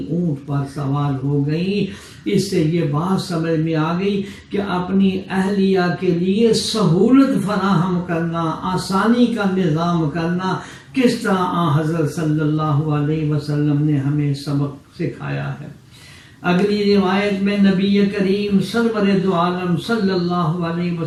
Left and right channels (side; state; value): both; identical; correlation 1.00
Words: اونٹ پر سوار ہو گئی۔ اس سے یہ بات سمجھ میں آ گئی کہ اپنی اہلیہ کے لیے سہولت فراہم کرنا، آسانی کا نظام کرنا کس طرح حضرت صلی اللہ علیہ وسلم نے ہمیں سبق سکھایا ہے۔ اگلی روایت میں نبی کریم سرور دو عالم صلی اللہ علیہ